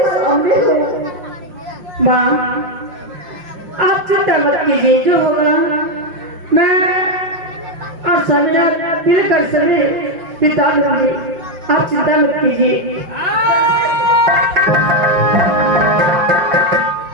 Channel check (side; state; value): left; late; 5.7 ms